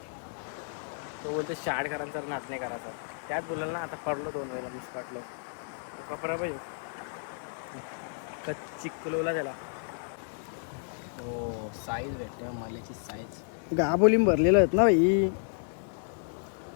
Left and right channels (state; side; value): silent; right; digital silence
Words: तो बोलतो शाळकरांचा नाच नाही करायचा. त्यात बोलाल ना आता पडलो 2 वेळेला मुसकाटलो. तो कपडा पाहिजे कच्ची कुलवला त्याला. हो साईज भेटल्या माल्याची साईज. गाबोलीम भरलेलं आहेत ना भाई.